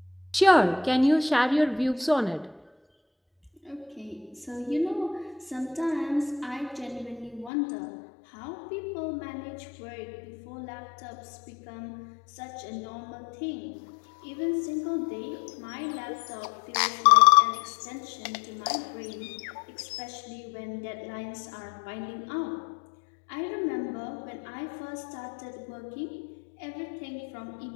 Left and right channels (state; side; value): drops out; right; at 7.5 s